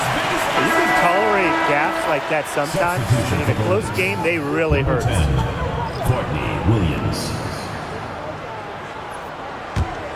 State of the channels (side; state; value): both; identical; correlation 1.00